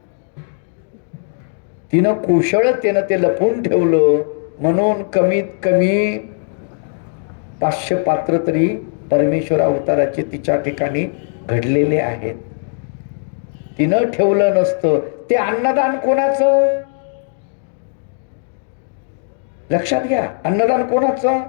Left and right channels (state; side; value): silent; right; digital silence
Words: तिनं कुशळतेनं ते लपवून ठेवलं म्हणून कमीत कमी 500 पात्र तरी परमेश्वर अवताराचे तिच्या ठिकाणी घडलेले आहेत. तिनं ठेवलं नसतं. ते अन्नदान कोणाचं? लक्षात घ्या, अन्नदान कोणाचं?